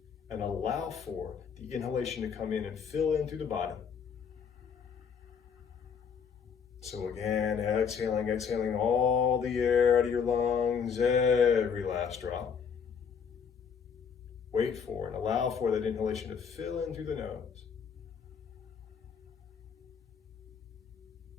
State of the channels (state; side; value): quieter; right; 6.7 dB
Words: and allow for the inhalation to come in and fill in through the body. So again, exhaling all the air out of your lungs, every last drop. Wait for and allow for that inhalation to fill in through the nose.